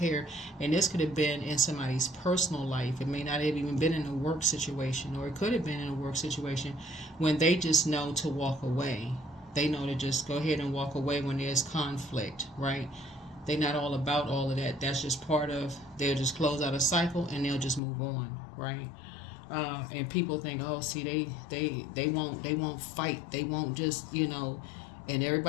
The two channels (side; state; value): right; drops out; at 17.8 s